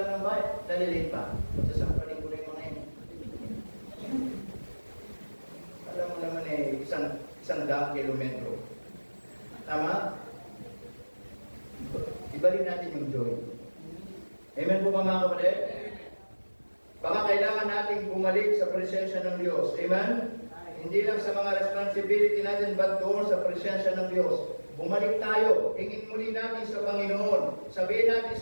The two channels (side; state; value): both; inverted; correlation -1.00